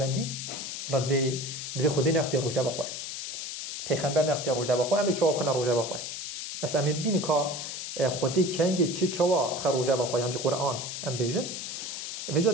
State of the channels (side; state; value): left; noise; hiss, 6 dB below the sound